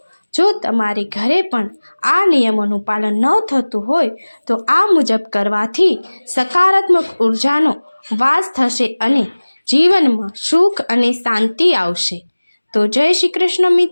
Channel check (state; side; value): inverted; both; correlation -1.00